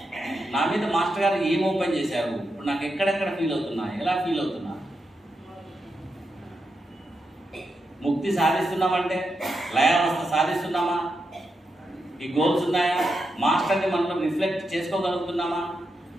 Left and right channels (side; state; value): both; normal; correlation 0.86